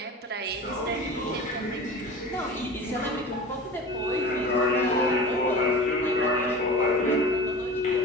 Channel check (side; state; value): both; normal; correlation 0.35